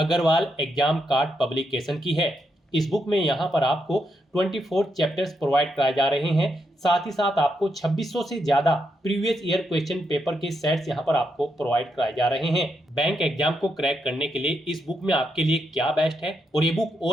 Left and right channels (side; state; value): both; normal; correlation 0.81